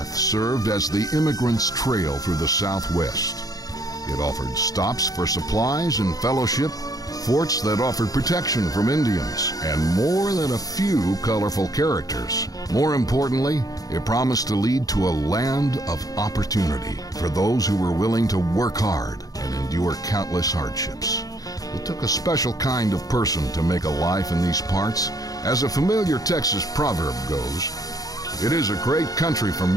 served as the immigrant's trail through the Southwest. It offered stops for supplies and fellowship, forts that offered protection from Indians, and more than a few colorful characters. More importantly, it promised to lead to a land of opportunity for those who were willing to work hard and endure countless hardships. It took a special kind of person to make a life in these parts. As a familiar Texas proverb goes, it is a great country for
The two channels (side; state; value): right; late; 0.18 ms